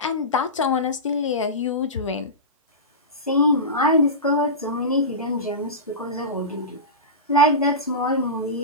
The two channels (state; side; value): normal; both; correlation -0.19